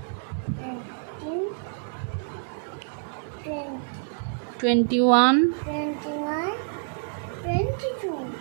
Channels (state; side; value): silent; left; digital silence